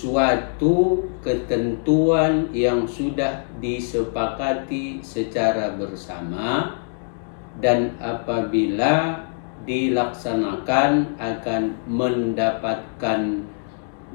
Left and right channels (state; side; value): silent; right; digital silence